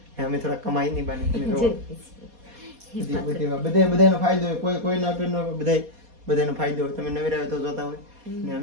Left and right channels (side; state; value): left; late; 4.2 ms